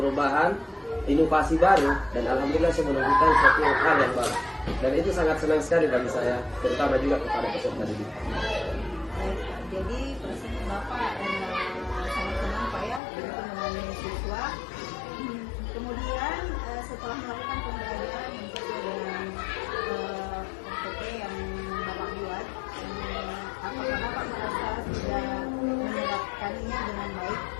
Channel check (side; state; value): right; drops out; at 13.0 s